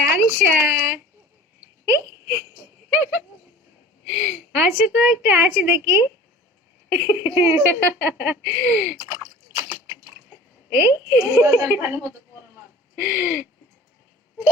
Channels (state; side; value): normal; both; correlation 0.42